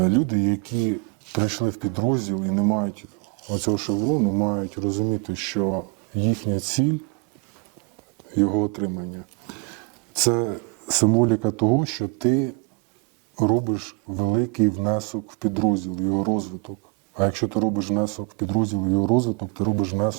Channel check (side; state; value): left; quieter; 30.0 dB